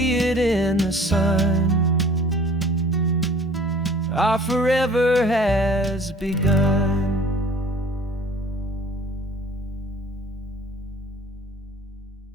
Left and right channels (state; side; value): normal; both; correlation 0.49